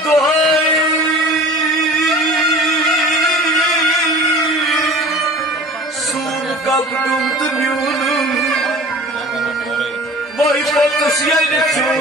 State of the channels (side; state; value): both; normal; correlation 0.43